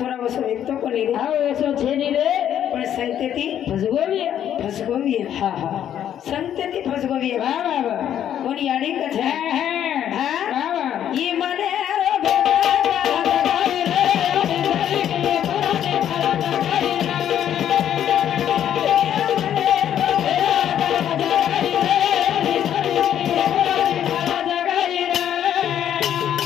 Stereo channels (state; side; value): quieter; right; 10.2 dB